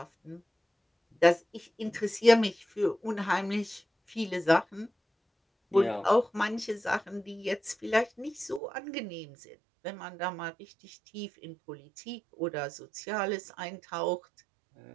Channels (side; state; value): left; drops out; at 8.6 s